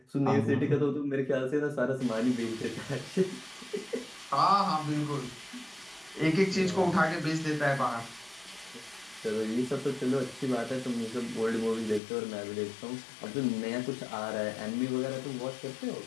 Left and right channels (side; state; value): right; drops out; at 12.0 s